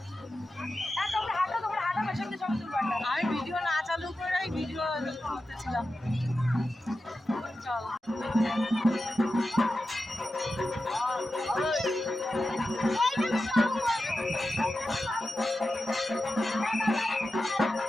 তোমরা হাঁটো পেছনে ছবি তুলবো। আমি ভিডিও না চালু করে ভিডিও করতেছিলাম। চল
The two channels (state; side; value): normal; both; correlation 0.92